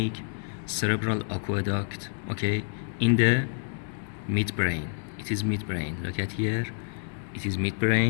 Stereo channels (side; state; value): right; silent; 59 dB below the other